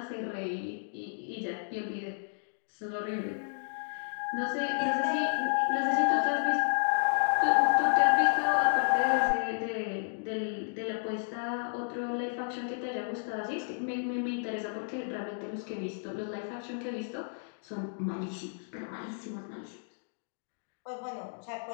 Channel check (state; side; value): silent; right; digital silence